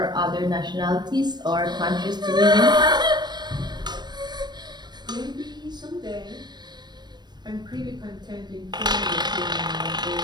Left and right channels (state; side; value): late; left; 0.21 ms